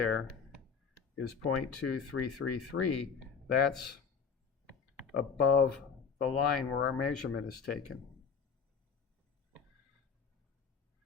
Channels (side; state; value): right; quieter; 6.2 dB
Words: is 0.2333. That's above the line where our measurement is taken.